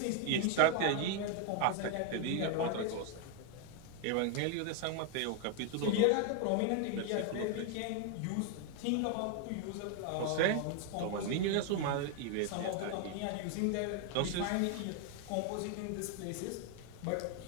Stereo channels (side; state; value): both; different; correlation 0.00